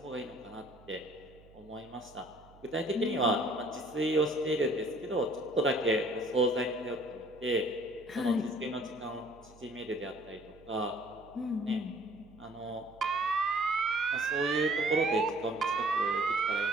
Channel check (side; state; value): right; noise; hum, 24 dB below the sound